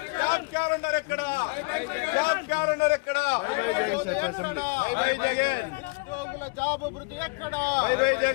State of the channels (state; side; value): quieter; right; 30.6 dB